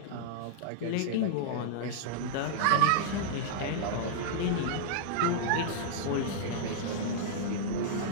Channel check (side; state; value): both; different; correlation -0.01